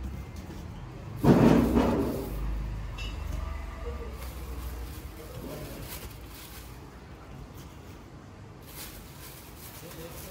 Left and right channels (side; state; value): both; identical; correlation 1.00